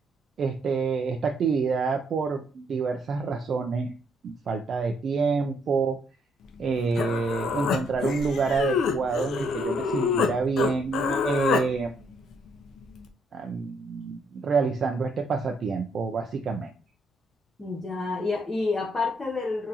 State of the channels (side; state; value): both; normal; correlation 0.71